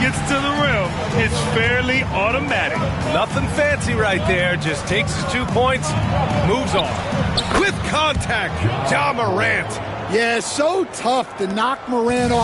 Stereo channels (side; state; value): both; identical; correlation 1.00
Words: to the rim, it's fairly automatic. Nothing fancy right there. Just takes his 2 points, moves on. With contact, Ja Morant. Yeah, so tough to knock Morant